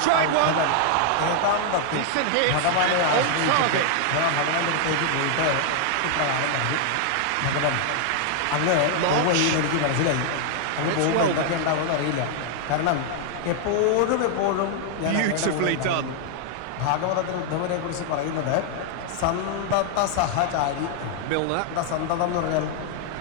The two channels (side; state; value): both; different; correlation 0.00